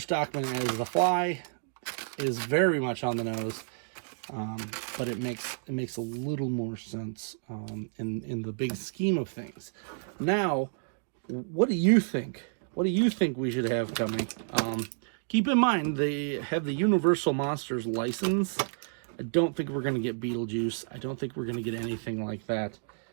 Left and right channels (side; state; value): left; silent; digital silence